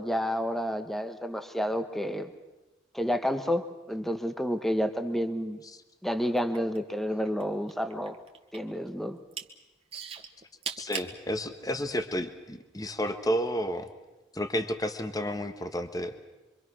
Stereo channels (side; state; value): both; normal; correlation 0.80